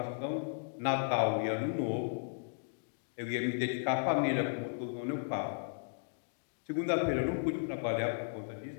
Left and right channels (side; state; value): right; silent; digital silence